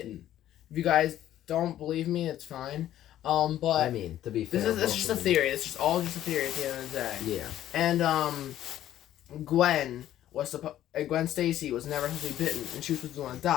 If you guys don't believe me, it's fine. But I mean, to be fair, this is just a theory. It's just all just a theory at the end of the day. Yeah. And Gwen Stacy was never supposed to be bitten, and she was supposed to be the one that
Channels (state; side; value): quieter; right; 12.4 dB